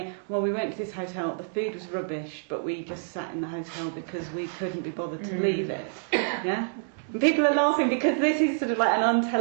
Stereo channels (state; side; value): silent; left; digital silence